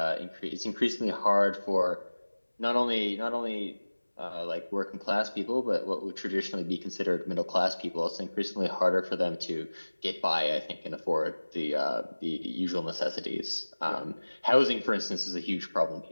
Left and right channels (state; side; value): inverted; both; correlation -1.00